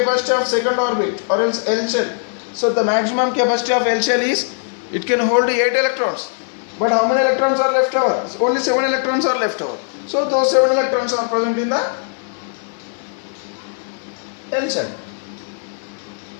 of second orbit, or else L shell? So the maximum capacity of L shell is, it can hold 8 electrons. But how many electrons are left over? Only 7 electrons are left over. So those 7 electrons are present in the L shell.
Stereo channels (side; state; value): right; silent; digital silence